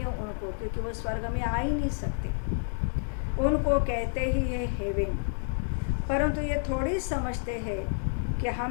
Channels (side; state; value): right; silent; 58 dB below the other